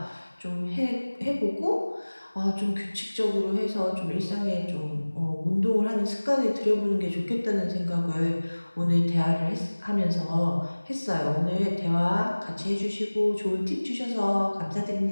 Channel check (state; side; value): inverted; both; correlation -1.00